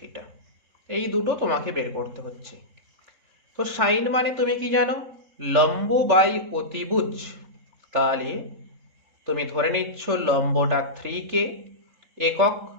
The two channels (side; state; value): left; late; 3.7 ms